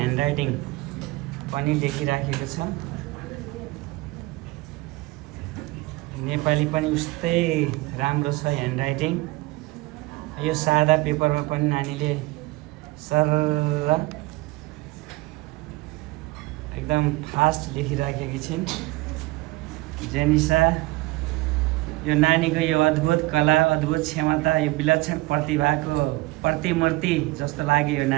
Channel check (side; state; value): left; quieter; 20.8 dB